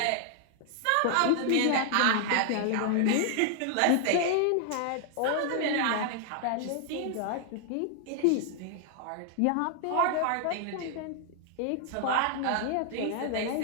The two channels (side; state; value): both; different; correlation 0.00